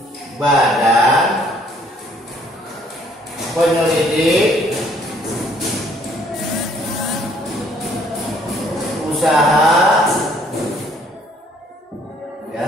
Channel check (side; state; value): both; normal; correlation 0.62